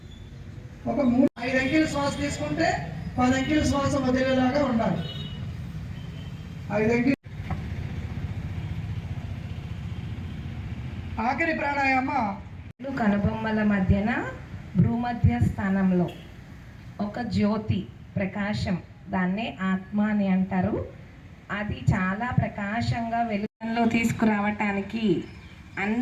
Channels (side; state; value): both; identical; correlation 1.00